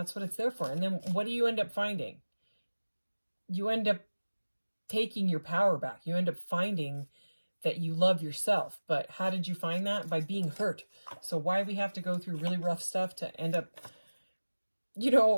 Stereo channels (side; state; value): both; inverted; correlation -1.00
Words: what it's there for. And then what do you end up finding? You end up taking your power back. You end up finding that you love yourself. But how did you find that? By being hurt. So why we have to go through really rough stuff to end up, you